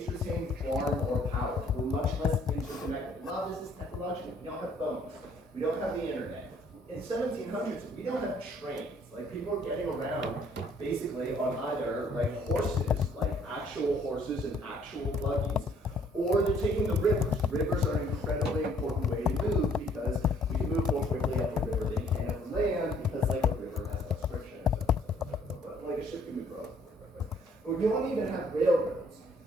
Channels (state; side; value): normal; both; correlation 0.62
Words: retained far more power. We're much less interconnected. A lot of this is technological. We don't have phones. We don't have the internet. In 1700s, we don't have trains. Like people are getting around basically on either like horses, like actual horses and actual buggies, or they're taking the rivers. Rivers are an incredibly important way to move because we can move more quickly up the river than you can up the land because like a river has less friction. But like a ship can move relatively quickly. But you don't even have railroads.